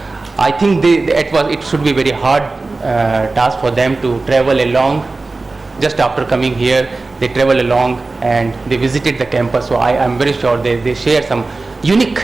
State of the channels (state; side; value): quieter; left; 3.5 dB